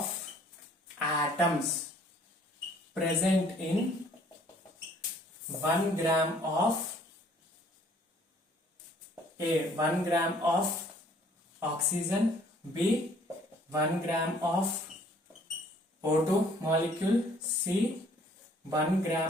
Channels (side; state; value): both; normal; correlation 0.59